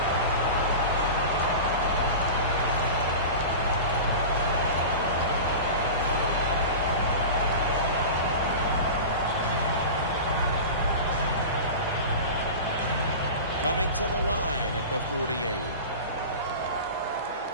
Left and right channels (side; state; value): both; inverted; correlation -0.31